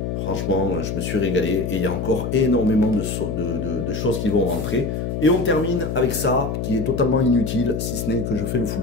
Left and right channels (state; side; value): noise; left; hum, 3 dB below the sound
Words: Franchement, je me suis régalé et il y a encore énormément de choses qui vont rentrer. Et on termine avec ça, qui est totalement inutile, si ce n'est que je fais le